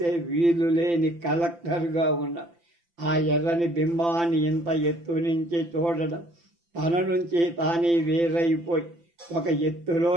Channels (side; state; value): left; late; 5.9 ms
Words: వీలు లేని కలెక్టర్గా ఉన్నాడు. ఆ ఎర్రని బింబాన్ని ఇంత ఎత్తు నుంచి చూడడం తన నుంచి తానే వేరైపోయి ఒక